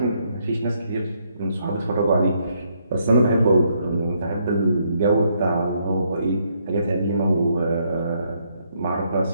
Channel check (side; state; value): both; inverted; correlation -0.73